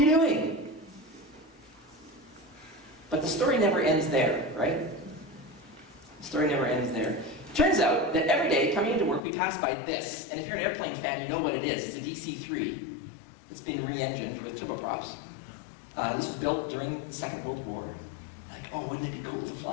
doing? But the story never ends there, right? The story never ends there. Turns out that every day, coming into work, we pass by this. And if you're an airplane fan, you know what it is. It's a DC-3. It's been re-engined with turboprops. This was built during the Second World War. Like, oh, wouldn't it be cool to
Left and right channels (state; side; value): drops out; right; at 9.2 s